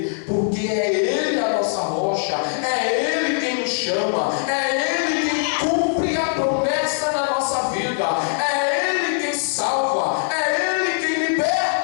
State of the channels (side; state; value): right; silent; digital silence